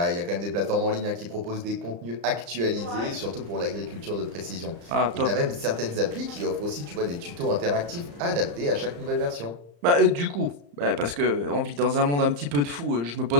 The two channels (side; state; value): left; late; 35 ms